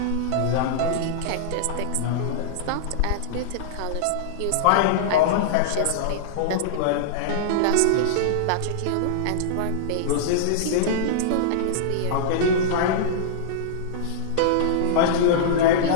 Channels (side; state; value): both; different; correlation -0.02